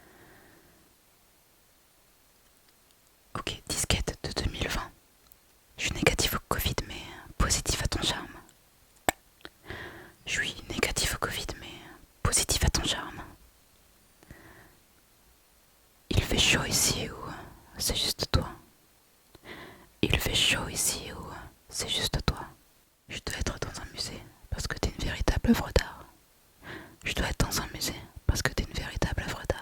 Ok, disquette de 2020. Je suis négatif au Covid mais positif à ton charme. Je suis négatif au Covid mais positif à ton charme. Il fait chaud ici ou c'est juste toi? Il fait chaud ici ou c'est juste toi? Je dois être dans un musée parce que t'es une véritable œuvre d'art. Je dois être dans un musée parce que t'es une véritable œuvre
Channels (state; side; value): identical; both; correlation 1.00